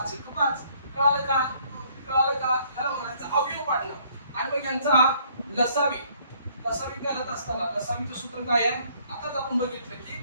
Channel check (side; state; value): both; inverted; correlation -0.63